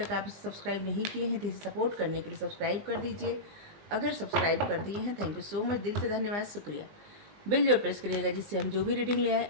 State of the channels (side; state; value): left; late; 20 ms